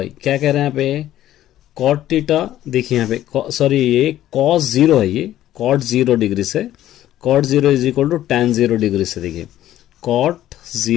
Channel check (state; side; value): quieter; right; 13.1 dB